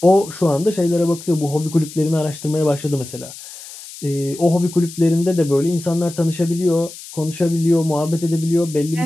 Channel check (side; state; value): left; noise; hiss, 15 dB below the sound